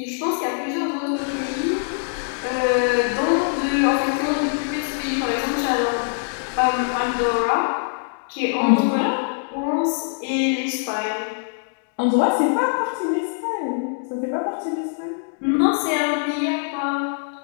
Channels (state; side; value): silent; right; digital silence